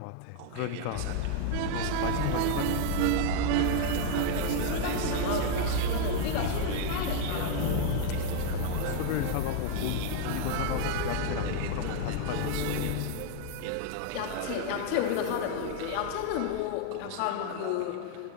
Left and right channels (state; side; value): different; both; correlation 0.00